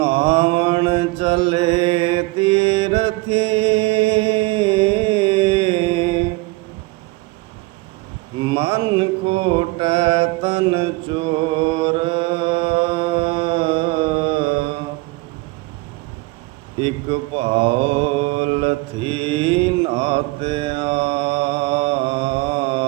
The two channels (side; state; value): left; quieter; 23.8 dB